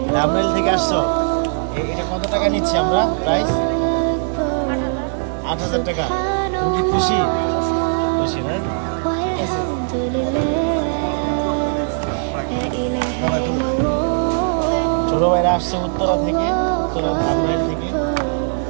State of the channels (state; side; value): silent; left; 66 dB below the other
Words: ধামরাইল থেকে আসছো। এটা কত টাকা নিচ্ছি আমরা? প্রাইস ৮,০০০ টাকা। তুমি কি খুশি? খুশি না? ছোট ভাইরা আসছে উত্তরা থেকে, উত্তরা ধামরাইল থেকে।